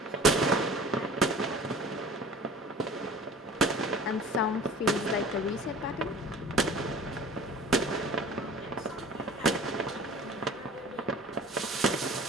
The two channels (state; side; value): normal; both; correlation 0.44